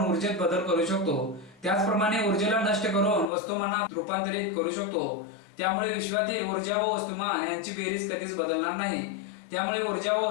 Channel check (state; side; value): drops out; right; at 3.2 s